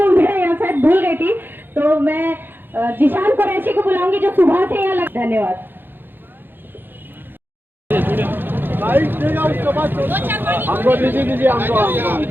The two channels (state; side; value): late; left; 0.097 ms